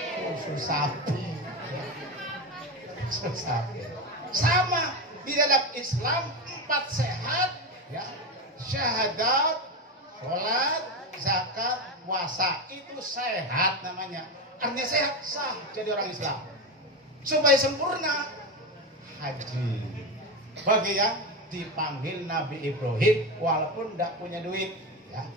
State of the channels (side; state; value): both; normal; correlation 0.16